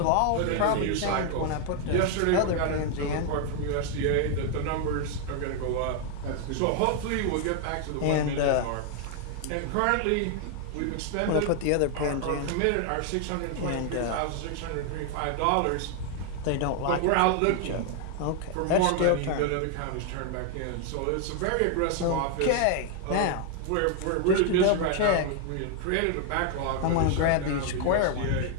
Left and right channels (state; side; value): different; both; correlation 0.00